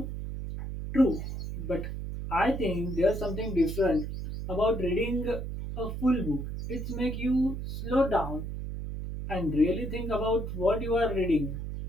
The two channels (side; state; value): right; noise; hum, 5 dB below the sound